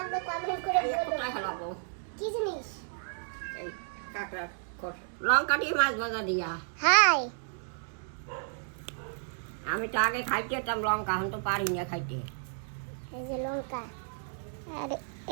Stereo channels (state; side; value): silent; left; digital silence